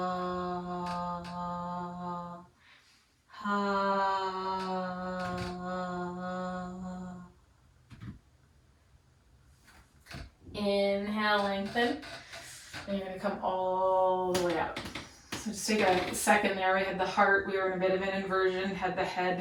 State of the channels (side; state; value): both; identical; correlation 1.00